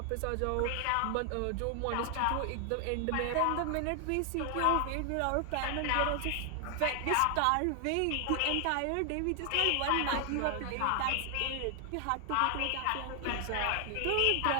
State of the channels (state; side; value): different; both; correlation 0.00